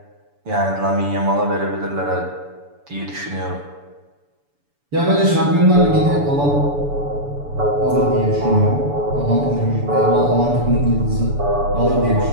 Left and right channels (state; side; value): late; left; 7.0 ms